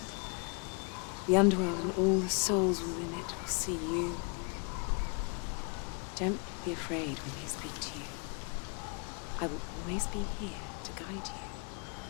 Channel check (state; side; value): quieter; right; 35.5 dB